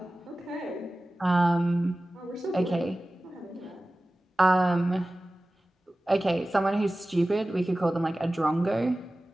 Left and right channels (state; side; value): normal; both; correlation 0.96